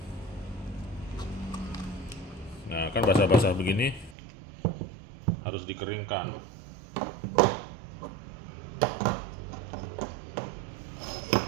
Nah, kan basah-basah begini harus dikeringkan.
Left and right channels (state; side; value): drops out; left; at 4.2 s